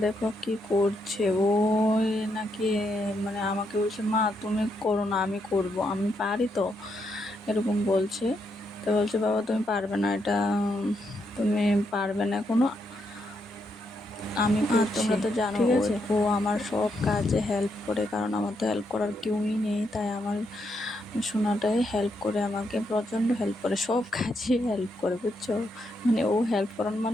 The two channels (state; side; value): normal; both; correlation 0.79